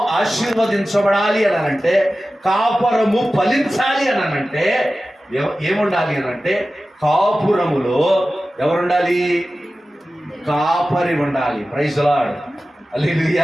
ఆశీర్వదించబడాలి అనంటే, కాపురము ఫలించాలి అనంటే ఏముండాలి అనంటే, కాపురములో ఎవరుండాలి? కాపరి ఉండాలి. ప్రైజ్ లార్డ్,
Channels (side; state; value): both; normal; correlation 0.95